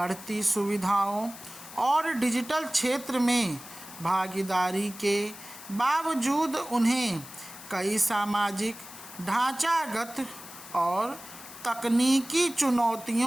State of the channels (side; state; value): left; noise; hiss, 15 dB below the sound